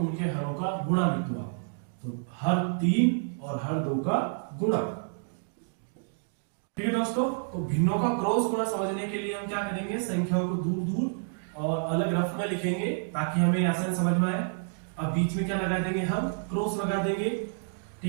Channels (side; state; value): left; silent; digital silence